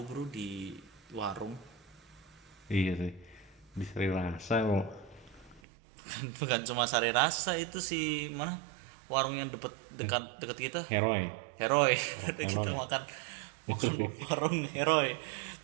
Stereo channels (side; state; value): left; drops out; at 5.6 s